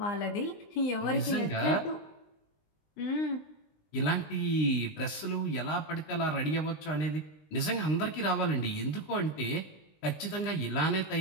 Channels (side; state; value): right; late; 20 ms